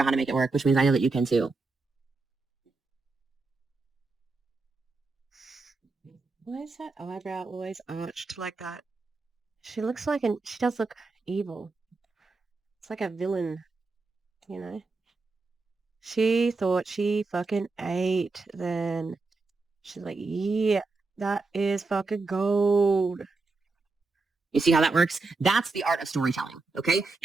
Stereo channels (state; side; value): quieter; left; 3.8 dB